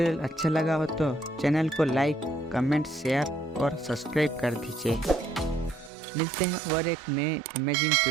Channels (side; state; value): left; drops out; at 5.9 s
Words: अच्छा लगा हो तो चैनल को लाइक, कमेंट, शेयर और सब्सक्राइब कर दीजिए। मिलते हैं और एक नए अमेजिंग